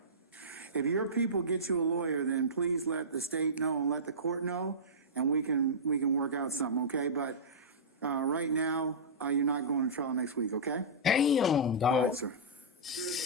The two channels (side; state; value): both; normal; correlation -0.17